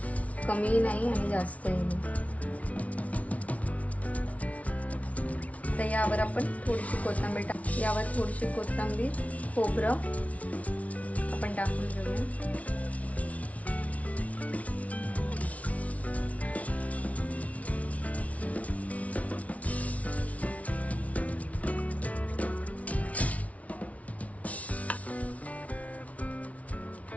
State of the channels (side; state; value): right; late; 0.067 ms